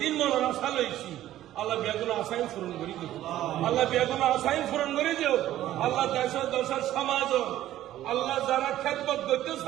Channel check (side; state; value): left; quieter; 13.4 dB